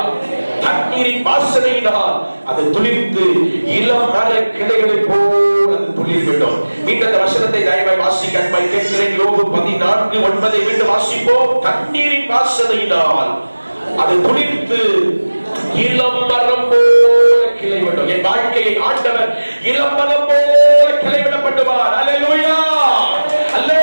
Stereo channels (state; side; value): inverted; both; correlation -1.00